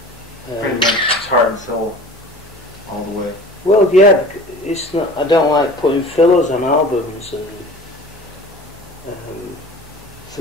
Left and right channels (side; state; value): both; normal; correlation 0.41